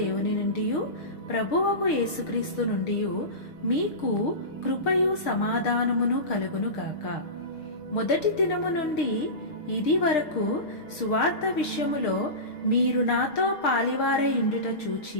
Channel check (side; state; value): right; late; 6.6 ms